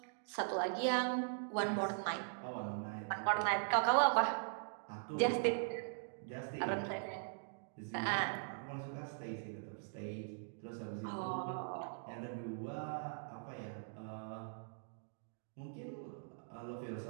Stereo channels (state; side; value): silent; left; digital silence